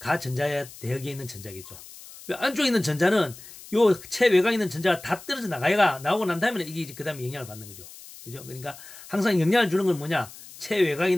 대역에 있는 전자겠죠. 왜 안쪽에 있는 전자는 요 최외곽에 있는 전자가 다 떨어져 나오고 난 다음에 이게 그 다음에 영향을 받는 거죠. 그죠? 그러니까 항상 영향을 주는 건 뭐냐? 최외곽에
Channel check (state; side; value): noise; left; hiss, 17 dB below the sound